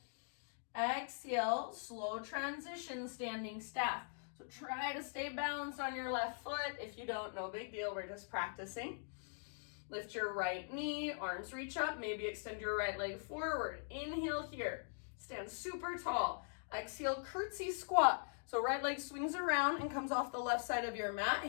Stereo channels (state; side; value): silent; right; digital silence